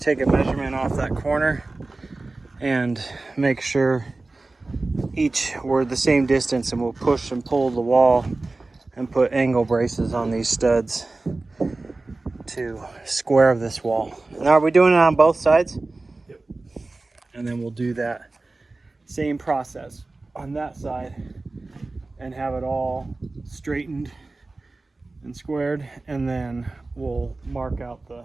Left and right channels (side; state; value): left; quieter; 3.3 dB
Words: a measurement off that corner and make sure each were the same distance, and we'll push and pull the wall and put angle braces on these studs to square this wall. Now, are we doing it on both sides? Yep. And then we'll do that same process on that side and have it all straightened and squared, and then we'll mark out the